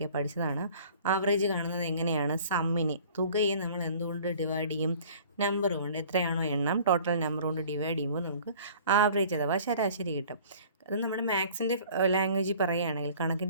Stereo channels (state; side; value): inverted; both; correlation -0.49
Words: പഠിച്ചതാണ്. ആവറേജ് കാണുന്നത് എങ്ങനെയാണ്? സമ്മിനെ, തുകയെ നമ്മൾ എന്തുകൊണ്ട് ഡിവൈഡ് ചെയ്യും? നമ്പർ കൊണ്ട്, എത്രയാണോ എണ്ണം ടോട്ടൽ നമ്പർ കൊണ്ട് ഡിവൈഡ് ചെയ്യുമ്പോൾ നമുക്ക് ആവറേജ് അഥവാ ശരാശരി കിട്ടും. അത് നമ്മുടെ മാത്സിൻ്റെ ലാംഗ്വേജിൽ പറയുകയാണെങ്കിൽ,